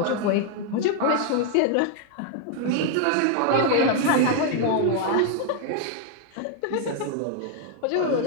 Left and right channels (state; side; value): different; both; correlation 0.00